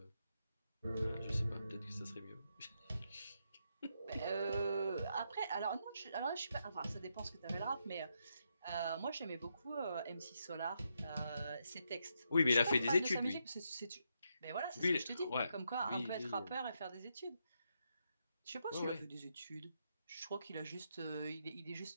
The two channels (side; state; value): both; inverted; correlation -0.81